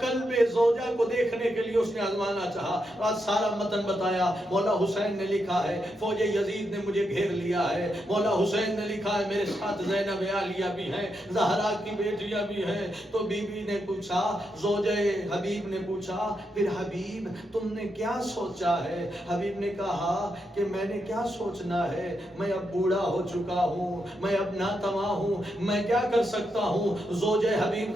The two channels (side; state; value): both; normal; correlation 0.83